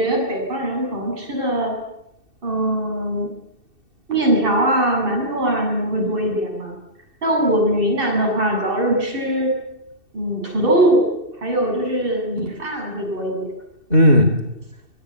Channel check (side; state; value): left; late; 2.7 ms